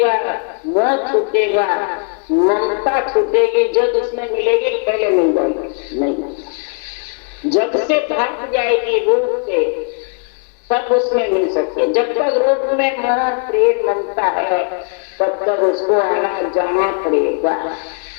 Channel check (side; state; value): right; quieter; 37.3 dB